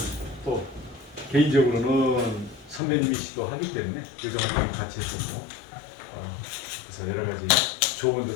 또 개인적으로는 선배님이시기도 하기 때문에 의정활동을 같이 했었고 그래서 여러 가지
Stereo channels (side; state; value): right; drops out; at 2.8 s